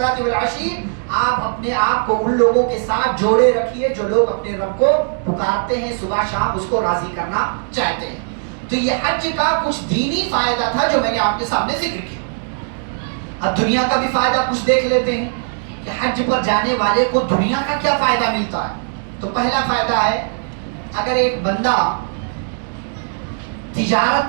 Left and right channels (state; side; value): silent; left; digital silence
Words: وَالْعَشِيِّ. آپ اپنے آپ کو ان لوگوں کے ساتھ جوڑے رکھیے جو لوگ اپنے رب کو پکارتے ہیں صبح شام, اس کو راضی کرنا چاہتے ہیں. تو یہ حج کا کچھ دینی فائدہ تھا جو میں نے آپ کے سامنے ذکر کیا. اب دنیا کا بھی فائدہ کچھ دیکھ لیتے ہیں کہ حج پر جانے والے کو دنیا کا کیا فائدہ ملتا ہے. تو پہلا فائدہ ہے, اگر ایک بندہ